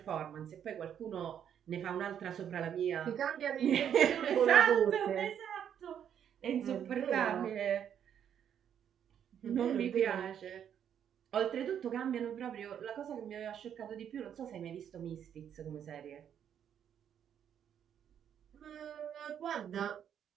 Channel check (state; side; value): quieter; left; 9.0 dB